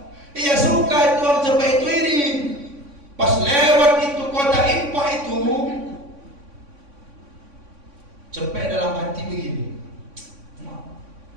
Iya suka itu orang cepet itu iri. Pas lewat itu kota Impa itu, cepet dalam hati begini.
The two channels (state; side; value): late; left; 3.6 ms